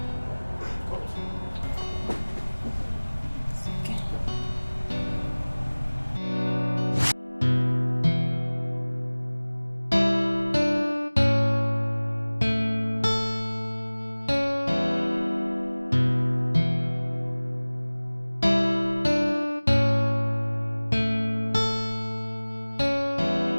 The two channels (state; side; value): inverted; both; correlation -1.00